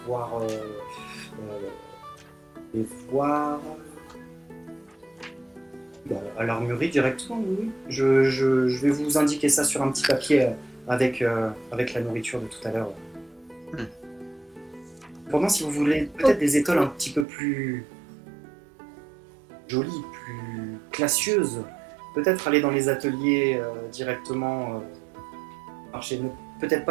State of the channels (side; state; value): left; drops out; at 17.2 s